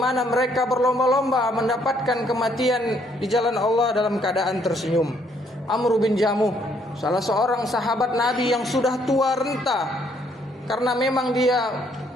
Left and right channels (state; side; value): normal; both; correlation 0.68